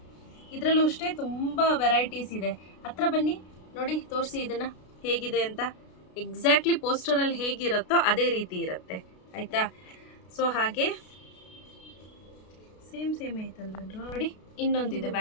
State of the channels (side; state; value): right; late; 33 ms